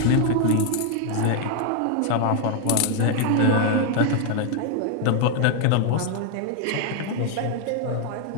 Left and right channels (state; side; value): different; both; correlation 0.00